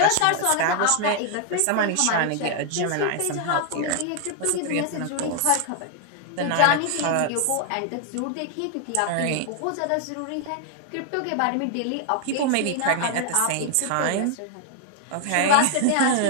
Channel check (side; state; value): both; different; correlation 0.00